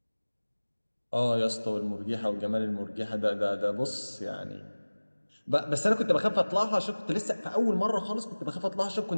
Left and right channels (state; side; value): inverted; both; correlation -1.00